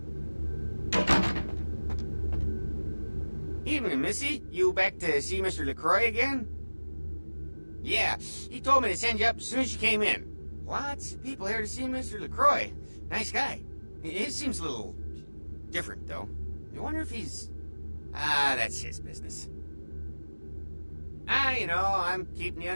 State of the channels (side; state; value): both; inverted; correlation -1.00